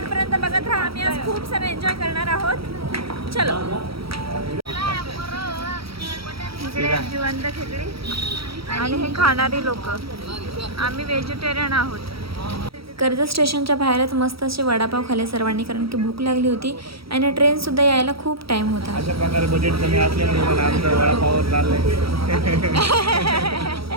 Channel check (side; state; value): left; late; 0.75 ms